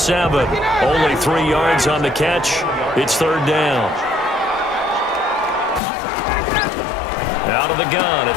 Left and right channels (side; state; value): right; drops out; at 5.8 s